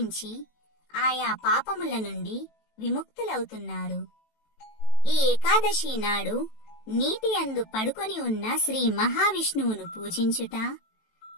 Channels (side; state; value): right; late; 18 ms